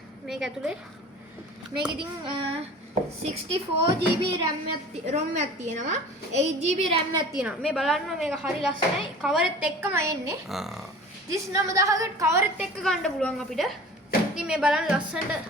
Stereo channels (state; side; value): normal; both; correlation 0.42